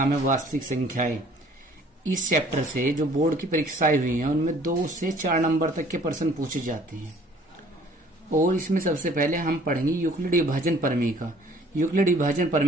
है वास्तविक संख्याएं। इस चैप्टर से जो बोर्ड की परीक्षाएं हुई हैं उनमें 2 से 4 नंबर तक के प्रश्न पूछे जाते हैं। और इसमें सबसे पहले हम पढ़ेंगे यूक्लिड विभाजन प्रमेय। यूक्लिड विभाजन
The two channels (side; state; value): both; normal; correlation 0.56